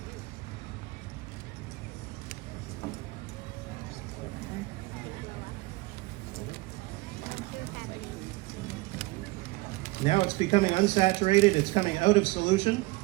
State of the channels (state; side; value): quieter; left; 22.6 dB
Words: Now it's becoming unsaturated, it's coming out of solution.